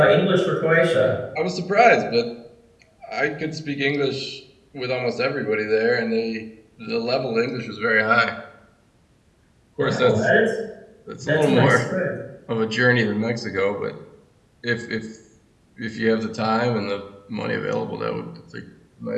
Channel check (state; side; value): identical; both; correlation 1.00